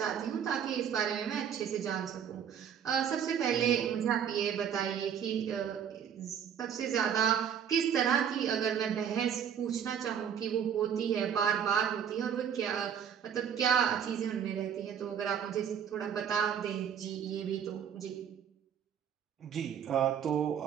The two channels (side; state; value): left; quieter; 8.4 dB